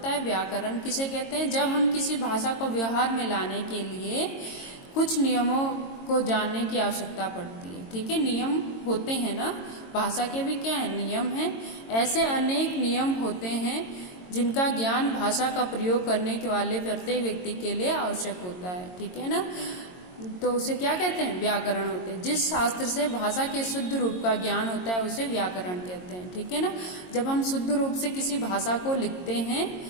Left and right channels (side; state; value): right; late; 22 ms